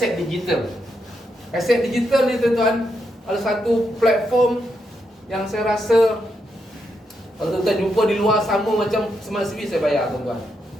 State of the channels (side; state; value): both; normal; correlation 0.82